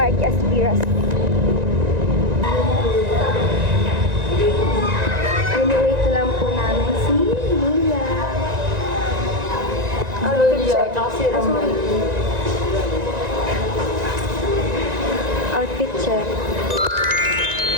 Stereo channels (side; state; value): left; late; 1.9 ms